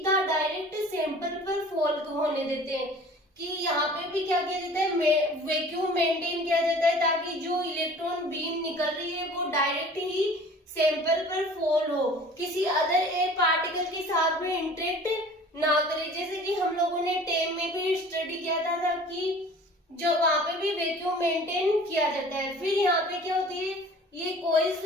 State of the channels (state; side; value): normal; both; correlation 0.46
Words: डायरेक्ट सैंपल पर फॉल होने देते हैं। कि यहाँ पे भी क्या किया जाता है, वैक्यूम मेंटेन किया जाता है ताकि जो इलेक्ट्रॉन बीम निकल रही है वो डायरेक्ट ही सैंपल पर फॉल हो, किसी अदर एयर पार्टिकल के साथ में इंटरेक्ट ना करे। जैसे कि हम लोगों ने टेम में भी स्टडी किया था कि जो वहां पे भी वैक्यूम मेंटेन किया जाता है। फिर यहाँ पे क्या होती है, ये कॉइल्स